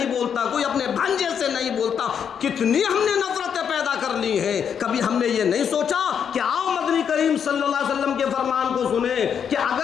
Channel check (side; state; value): right; quieter; 7.7 dB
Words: बोलता, कोई अपने भांजे से नहीं बोलता। कितनी हमने नफरतें पैदा कर ली हैं। कभी हमने ये नहीं सोचा कि आओ मदनी करीम सल्लल्लाहु अलैहि वसल्लम के फरमान को सुने कि